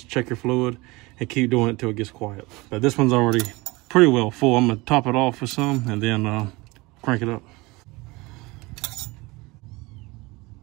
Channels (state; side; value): quieter; left; 23.2 dB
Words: check your fluid, and keep doing it till it gets quiet. But this one's already pretty well full. I'm going to top it off with some and then crank it up.